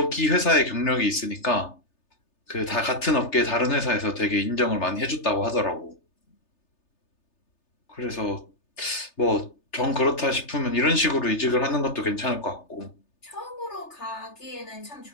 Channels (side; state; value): right; late; 3.3 ms